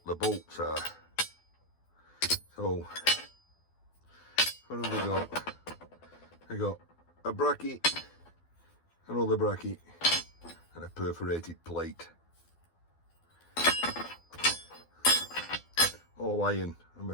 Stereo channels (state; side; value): late; right; 12 ms